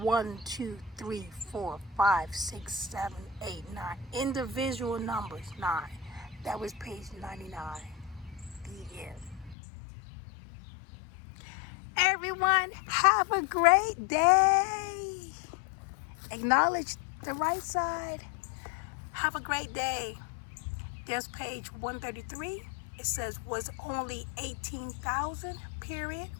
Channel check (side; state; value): right; drops out; at 9.6 s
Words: 2, 3, 4, 5, 6, 7, 8, 9. Individual numbers, 9. That was page 99. The end. Everyone, have a great day. Acknowledge the right side. Have a great day. There's page 133. It says was only 18,000, period.